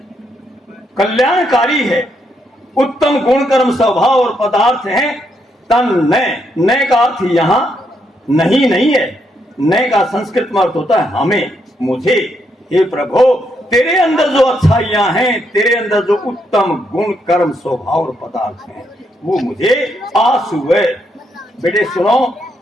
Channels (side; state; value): both; normal; correlation 0.77